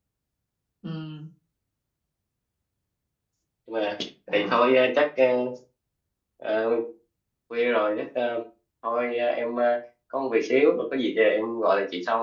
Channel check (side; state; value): both; identical; correlation 1.00